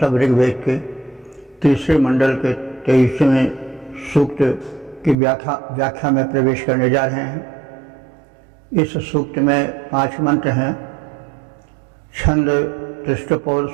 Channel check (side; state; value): left; drops out; at 5.2 s